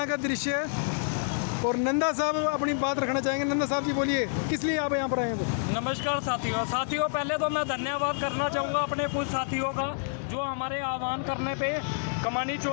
का दृश्य है और नंदा साहब अपनी बात रखना चाहेंगे। नंदा साहब जी बोलिए, किस लिए आप यहाँ पर आए हैं? तो नमस्कार साथियों, पहले तो मैं धन्यवाद करना चाहूँगा अपने कुछ साथियों का जो हमारे आह्वान करने पे कमानी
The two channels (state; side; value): silent; right; digital silence